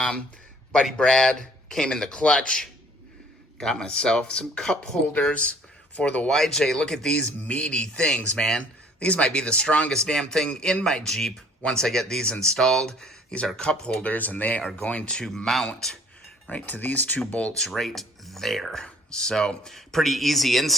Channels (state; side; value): normal; both; correlation 0.56